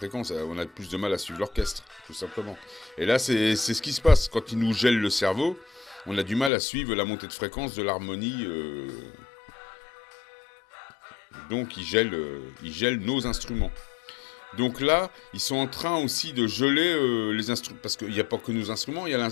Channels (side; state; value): right; drops out; at 6.5 s